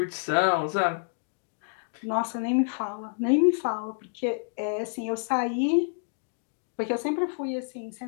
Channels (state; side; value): silent; right; digital silence